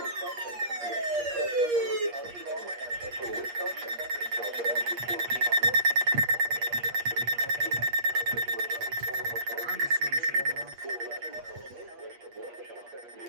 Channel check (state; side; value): late; left; 8.5 ms